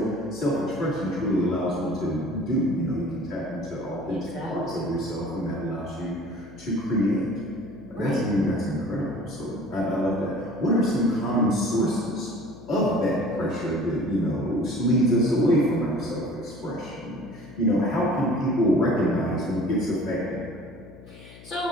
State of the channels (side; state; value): left; noise; hum, 19 dB below the sound